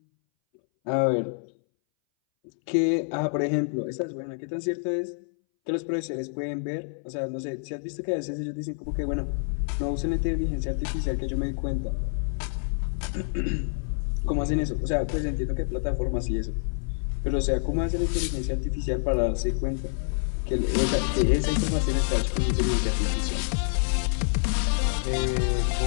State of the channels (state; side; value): silent; right; 60 dB below the other